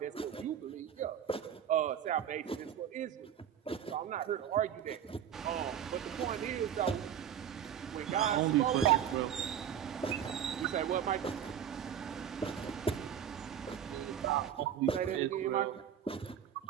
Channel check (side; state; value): left; quieter; 9.3 dB